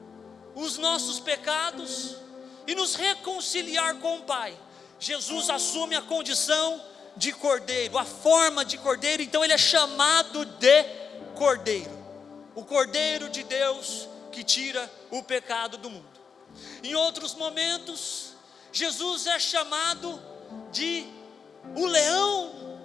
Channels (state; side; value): quieter; right; 6.0 dB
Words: os nossos pecados e nos reconciliar com o Pai. Jesus assume a condição de cordeiro, a forma de cordeiro, então ele é chamado de cordeiro, o cordeiro de Deus que tira o pecado do mundo. Em outros momentos, Jesus é chamado de o